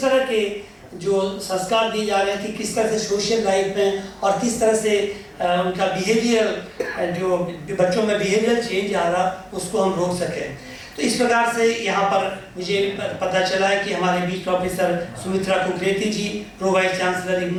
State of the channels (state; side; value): identical; both; correlation 1.00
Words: तरह के जो संस्कार दिए जा रहे हैं कि किस तरह से सोशल लाइफ में और किस तरह से उनका बिहेवियर, जो बच्चों में बिहेवियर चेंज आ रहा, उसको हम रोक सकें। तो इस प्रकार से यहाँ पर मुझे पता चला है कि हमारे बीच प्रोफेसर सुमित्रा कुकरेती जी, प्रो वाइस चांसलर